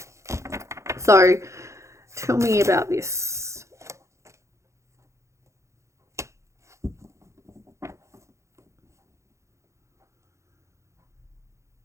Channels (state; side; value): late; left; 0.14 ms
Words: So tell me about this.